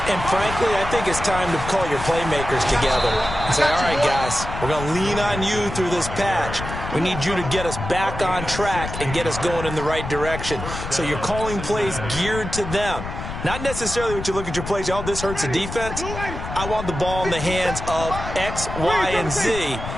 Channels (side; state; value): left; noise; rumble, 7 dB below the sound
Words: And frankly, I think it's time to call your playmakers together and say, all right, guys, we're going to lean on you through this patch. We need you to get us back on track and get us going in the right direction. So you're calling plays geared to them. Not necessarily what you look at your plays, oh, this hurts the defense. I want the ball in the hands of X, Y, and Z